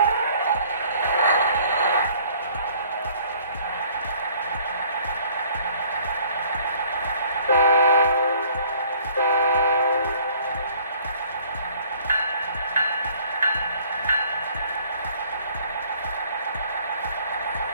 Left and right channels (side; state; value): both; inverted; correlation -0.57